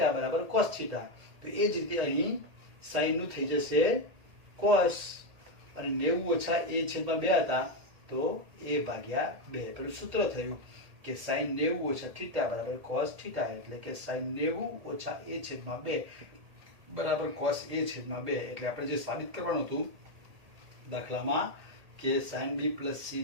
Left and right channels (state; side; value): late; left; 1.8 ms